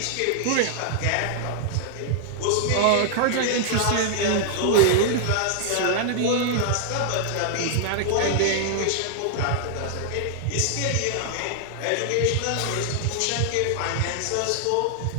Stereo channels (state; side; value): different; both; correlation 0.00